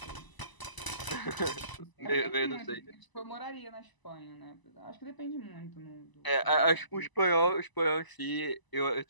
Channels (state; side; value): late; right; 1.0 ms